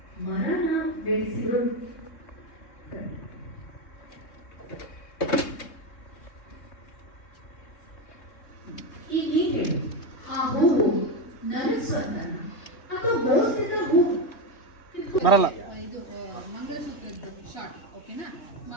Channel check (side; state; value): right; late; 3.6 ms